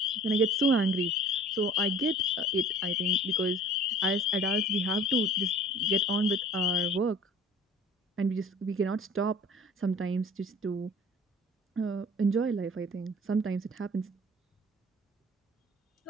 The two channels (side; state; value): both; normal; correlation 0.47